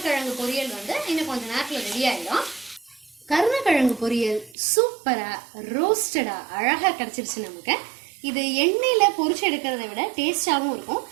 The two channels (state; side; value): drops out; left; at 4.5 s